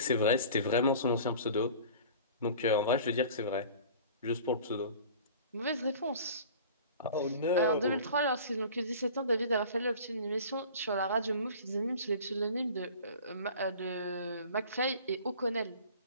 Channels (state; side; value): inverted; both; correlation -0.43